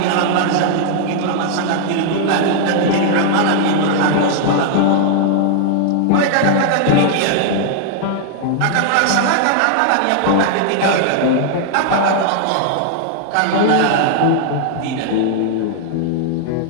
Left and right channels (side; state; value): both; different; correlation 0.00